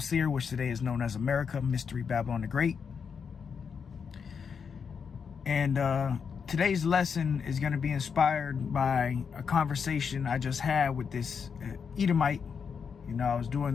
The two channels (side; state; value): right; quieter; 6.3 dB